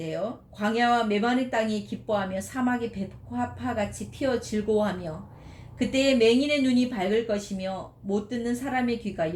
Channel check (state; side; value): identical; both; correlation 1.00